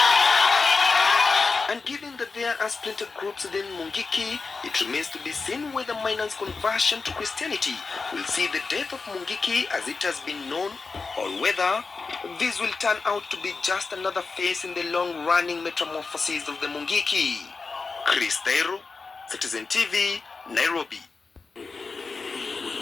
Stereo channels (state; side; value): quieter; right; 4.3 dB